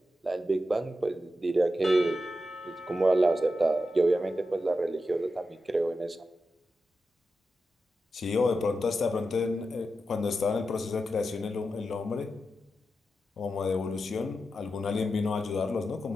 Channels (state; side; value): normal; both; correlation 0.89